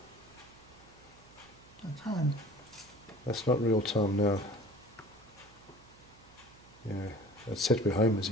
That's home. that's not real time now. Yeah, that's set where home is,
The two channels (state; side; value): noise; right; hum, 25 dB below the sound